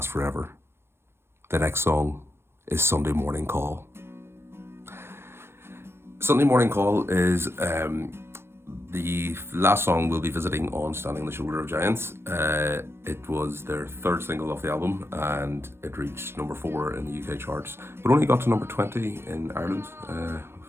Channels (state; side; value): late; left; 0.12 ms